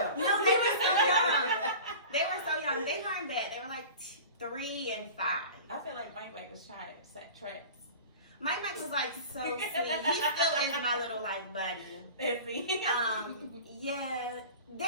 they were so young. They weren't bad. They were like 3 and 5. I feel like Mike was trying to set traps. Mike was like so sweet. He still is my little like buddy. Is he? Yeah.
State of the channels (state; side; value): inverted; both; correlation -0.37